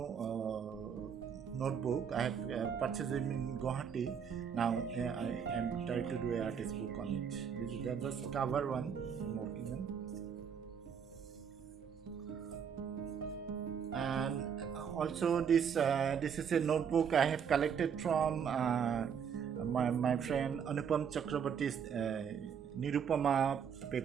notebook. I have purchased it in Guwahati. Now I am trying to do an artist book on it. This is the just cover one I'm working on. And also this is a notebook I have collected from my friend Anupam Chakraborty's Nirupama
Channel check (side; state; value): left; quieter; 7.4 dB